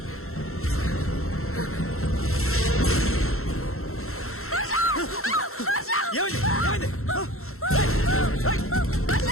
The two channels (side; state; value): right; late; 0.62 ms